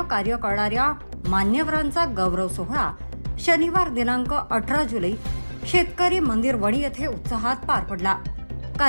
कार्य करणाऱ्या मान्यवरांचा गौरव सोहळा शनिवार दिनांक 18 जुलै शेतकरी मंदिर वणी येथे उत्साहात पार पडला।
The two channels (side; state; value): both; inverted; correlation -1.00